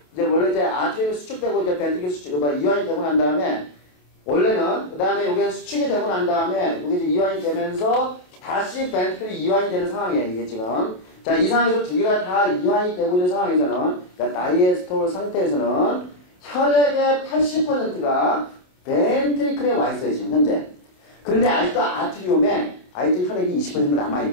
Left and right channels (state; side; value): late; right; 28 ms